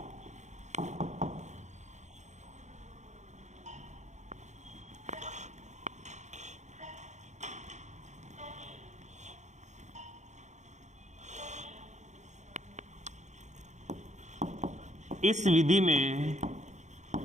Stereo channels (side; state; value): left; late; 0.34 ms